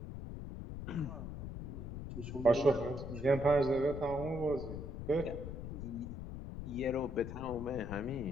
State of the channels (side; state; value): left; noise; rumble, 7 dB below the sound